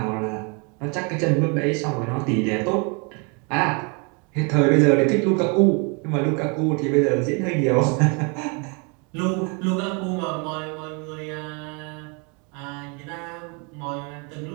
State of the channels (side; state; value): left; quieter; 33.4 dB